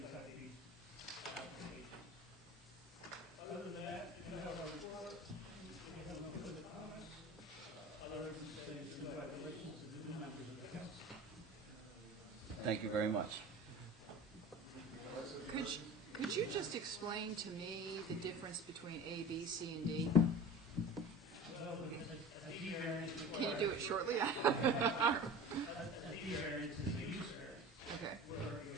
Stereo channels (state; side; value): normal; both; correlation 0.36